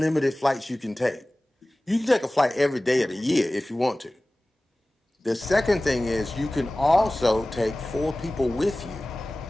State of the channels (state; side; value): normal; both; correlation 0.98